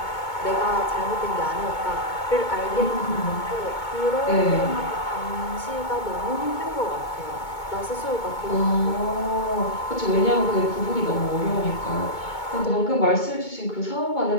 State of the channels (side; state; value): right; late; 2.2 ms